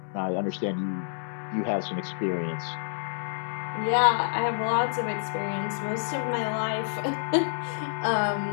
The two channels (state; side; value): silent; right; digital silence